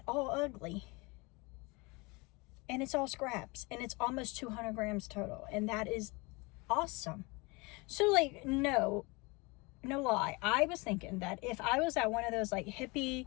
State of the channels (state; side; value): quieter; right; 26.4 dB